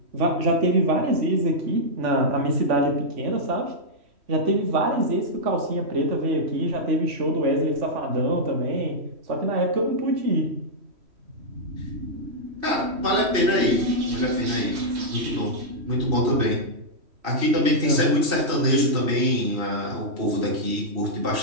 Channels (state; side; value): late; left; 3.1 ms